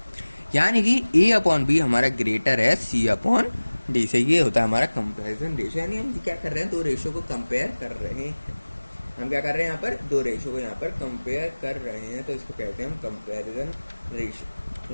यानी कि A/B हमारा ग्रेटर है C/D से। ये होता है हमारा कंपैरिजन रेशियो। यानी हम क्या कर रहे हैं, दो रेशियो को कंपेयर कर रहे हैं। हम क्या कर रहे हैं, यहाँ पर दो रेशियो को यहाँ पर कंपेयर कर रहे हैं, तो इसको कहते हैं हम कंपैरिजन रेशियो।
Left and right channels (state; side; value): inverted; both; correlation -1.00